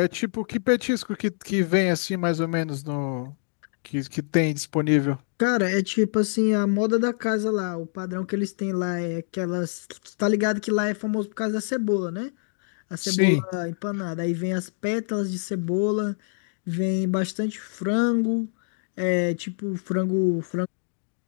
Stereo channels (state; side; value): silent; right; digital silence